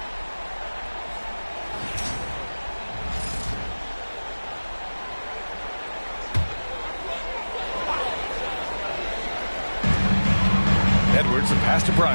Edwards, a pass to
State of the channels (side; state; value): both; inverted; correlation -1.00